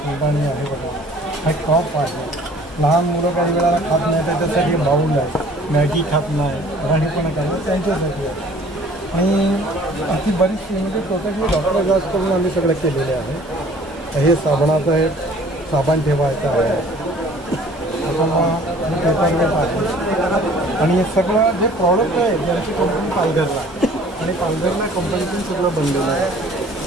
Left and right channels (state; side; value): normal; both; correlation 0.52